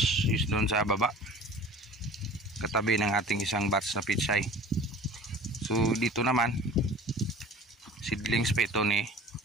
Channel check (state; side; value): normal; both; correlation 0.43